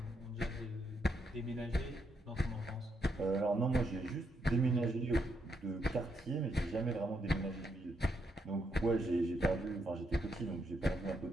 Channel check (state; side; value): normal; both; correlation 0.78